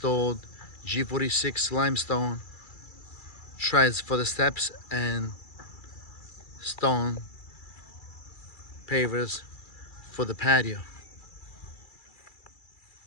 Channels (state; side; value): late; right; 2.3 ms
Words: G46 limestone treads for the steps and stone pavers for the patio.